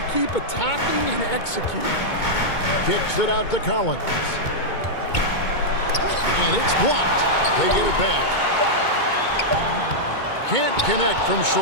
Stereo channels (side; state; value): right; late; 2.2 ms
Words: keep attacking and executing. Kicks it out to Collins. And it's blocked. They get it back. Can't connect from